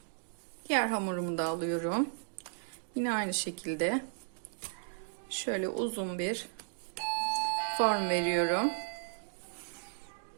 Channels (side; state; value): left; silent; digital silence